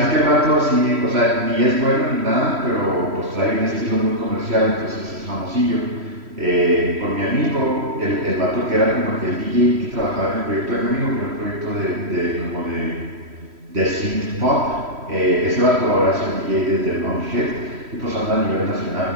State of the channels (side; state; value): left; late; 3.1 ms